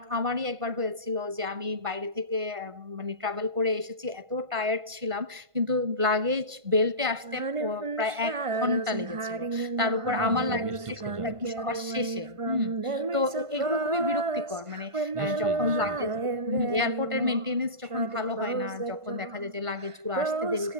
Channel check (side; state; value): left; late; 1.5 ms